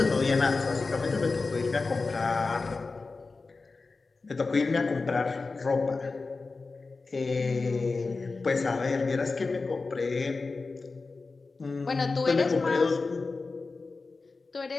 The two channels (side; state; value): right; quieter; 3.9 dB